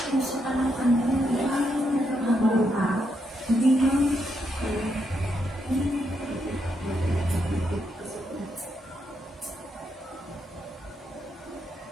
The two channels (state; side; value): normal; both; correlation 0.80